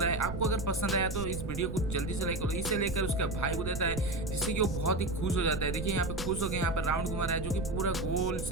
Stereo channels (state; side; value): noise; right; rumble, 6 dB below the sound